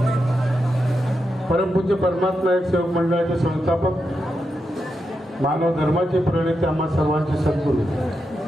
परमपूज्य परमात्मा एक सेवक मंडळाचे संस्थापक मानव धर्माचे प्रणेते आम्हा सर्वांचे सद्गुरू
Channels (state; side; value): normal; both; correlation 0.86